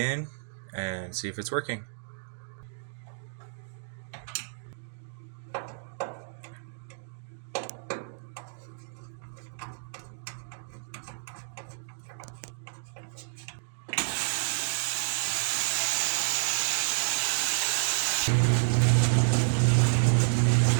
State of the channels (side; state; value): left; silent; digital silence